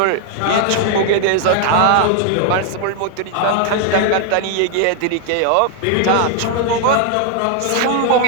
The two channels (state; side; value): different; both; correlation 0.00